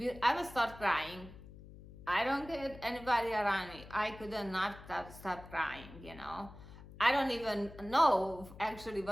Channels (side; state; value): left; noise; hum, 17 dB below the sound